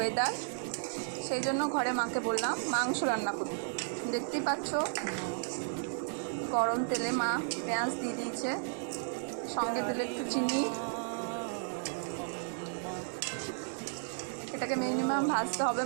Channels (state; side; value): silent; left; 55 dB below the other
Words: সেই জন্য ঘরে মাকে বললাম মাংস রান্না করতে। দেখতেই পাচ্ছ গরম তেলে মা পেঁয়াজ দিয়ে দিয়েছে, সঙ্গে দিলে একটু চিনি। এটাকে মিনিমাম ভাজতে হবে